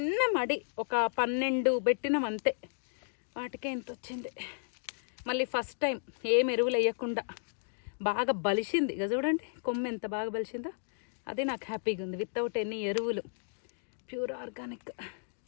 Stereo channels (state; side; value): silent; right; digital silence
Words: మడి ఒక 12 పెట్టినాం అంతే. వాటికే ఎంత వచ్చింది. మళ్ళీ ఫస్ట్ టైం ఏం ఎరువులు వేయకుండా బాగా బలిసింది. ఇక చూడండి కొమ్మ ఎంత బాగా బలిసిందో. అది నాకు హ్యాపీగా ఉంది. వితౌట్ ఎనీ ఎరువులు, ప్యూర్ ఆర్గానిక్.